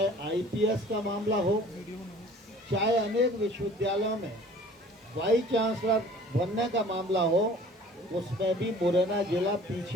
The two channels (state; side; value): normal; both; correlation 0.49